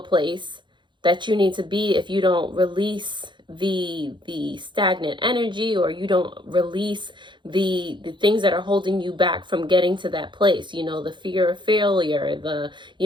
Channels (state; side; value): late; left; 0.23 ms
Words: place that you need to be if you don't release the stagnant energy, or you don't release the things that are holding you back from getting to that place. The fear of failure, the